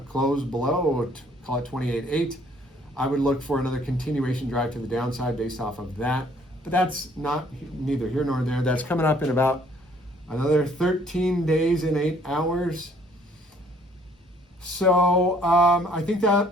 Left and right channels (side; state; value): both; normal; correlation 0.60